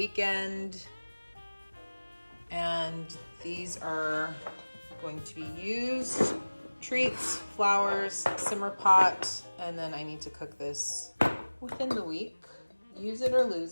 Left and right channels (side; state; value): both; inverted; correlation -1.00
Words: And these are going to be used. Treats, flowers, simmer pot, And then I need to cook this within the week. Use it or